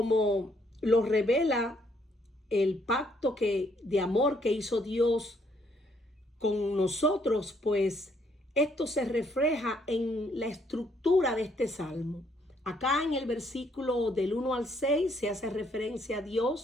lo revela el pacto de amor que hizo Dios con nosotros, pues esto se refleja en la estructura de este salmo. Acá en el versículo del 1 al 6 se hace referencia a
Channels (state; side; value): normal; both; correlation 0.69